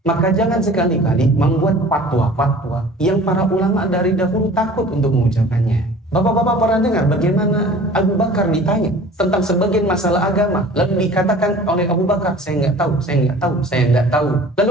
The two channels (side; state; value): both; normal; correlation 0.45